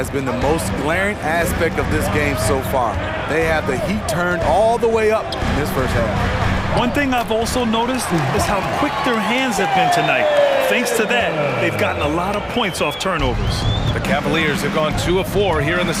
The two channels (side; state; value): both; identical; correlation 1.00